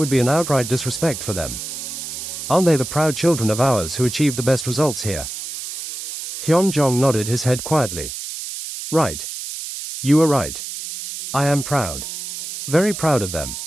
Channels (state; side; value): noise; right; hiss, 8 dB below the sound